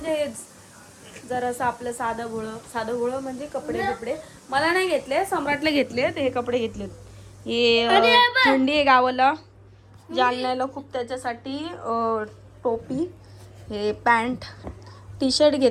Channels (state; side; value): identical; both; correlation 1.00